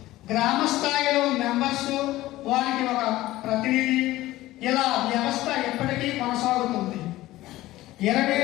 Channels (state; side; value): quieter; right; 16.6 dB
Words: గ్రామ స్థాయిలో మెంబర్స్, వారికి ఒక ప్రతినిధి, ఇలా వ్యవస్థ ఎప్పటికీ కొనసాగుతుంది.